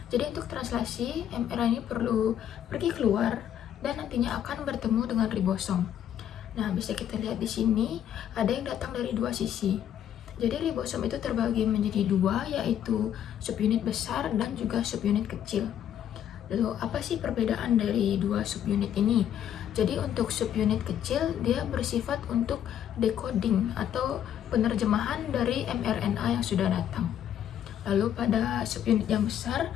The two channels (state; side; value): quieter; right; 10.1 dB